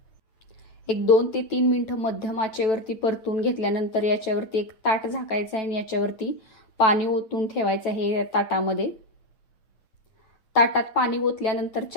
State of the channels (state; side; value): late; right; 9.1 ms